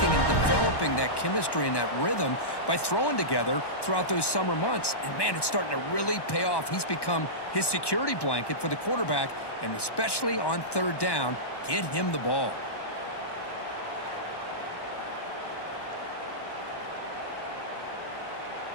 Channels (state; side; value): late; right; 1.1 ms